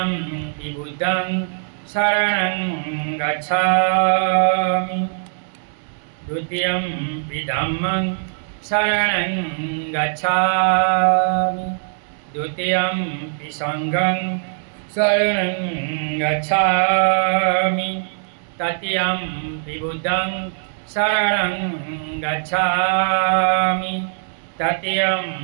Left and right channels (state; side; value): silent; left; digital silence